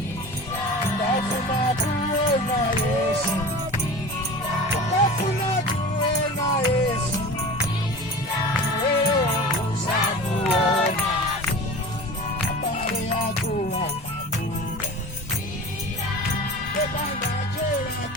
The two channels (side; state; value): both; normal; correlation 0.35